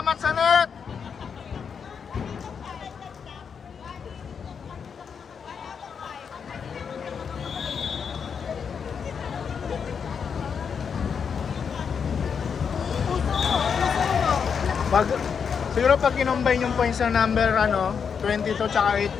sa net! Pag, siguro pag kinombine yung points ng number 22 tsaka 8,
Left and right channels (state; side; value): quieter; right; 6.6 dB